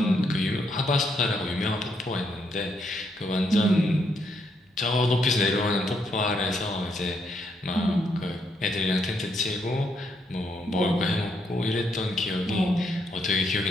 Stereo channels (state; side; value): normal; both; correlation 0.76